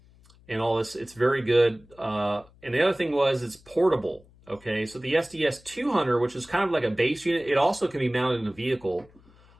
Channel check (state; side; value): noise; left; hum, 27 dB below the sound